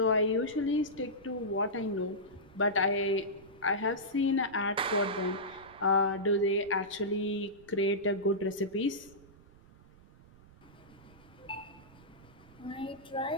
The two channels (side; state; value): right; noise; rumble, 24 dB below the sound